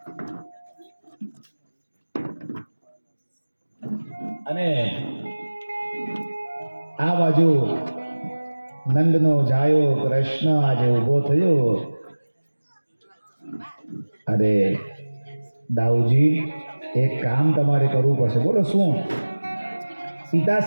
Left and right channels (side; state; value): both; inverted; correlation -1.00